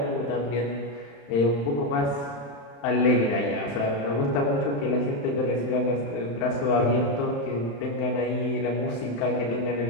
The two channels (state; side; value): late; right; 35 ms